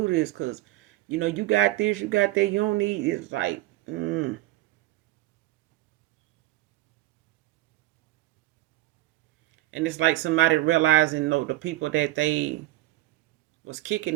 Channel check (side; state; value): left; quieter; 16.8 dB